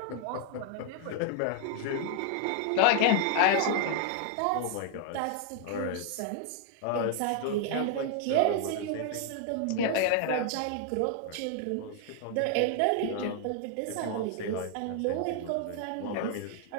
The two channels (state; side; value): different; both; correlation 0.00